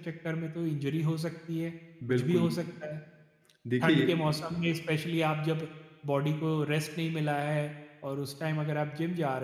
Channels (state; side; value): identical; both; correlation 1.00